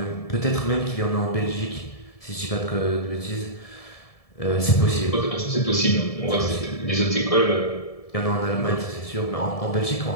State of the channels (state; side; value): late; right; 1.7 ms